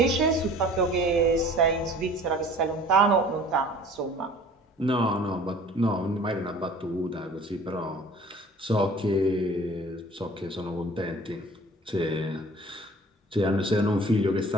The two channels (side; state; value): both; normal; correlation 0.48